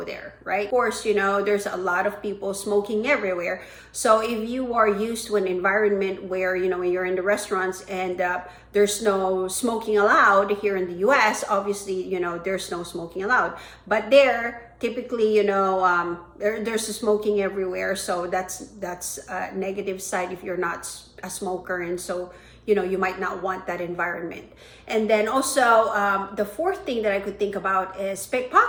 there, right? Of course, there's a lot of people smoking everywhere. So if you are used to an environment where, when you're in the restaurants and there's no smoking allowed here in the US, obviously, there's no smoking allowed. But there, typically, there's smoking everywhere. So that's a negative side if you're not a smoker. And so, you might not want that environment. And then also, the fourth thing that I could think about is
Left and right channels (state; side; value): identical; both; correlation 1.00